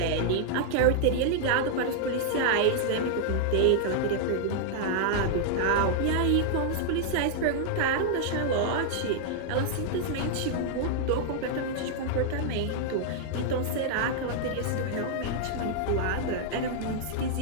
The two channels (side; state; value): both; different; correlation 0.00